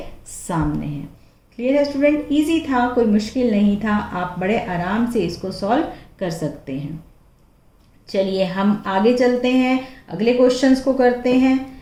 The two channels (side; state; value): both; identical; correlation 1.00